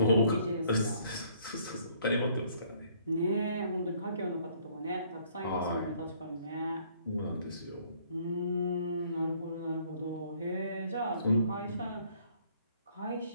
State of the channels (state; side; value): inverted; both; correlation -0.62